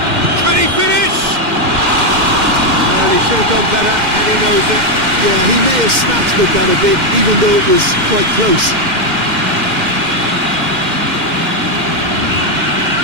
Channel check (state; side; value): late; left; 2.1 ms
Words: Can he finish? Well, he should have done better, and he knows it. Yeah, he may have snatched at that a bit, even though it was quite close.